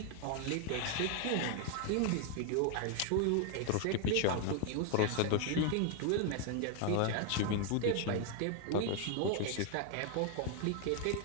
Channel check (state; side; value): different; both; correlation 0.00